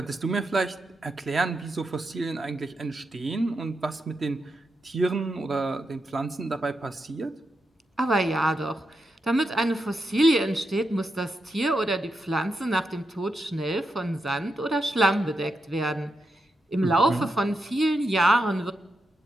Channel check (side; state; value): both; normal; correlation 0.86